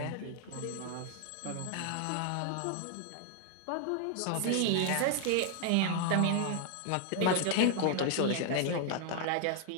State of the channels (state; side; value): different; both; correlation 0.00